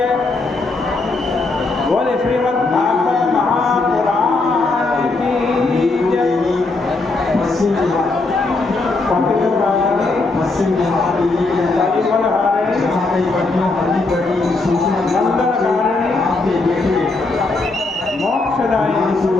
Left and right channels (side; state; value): right; quieter; 3.4 dB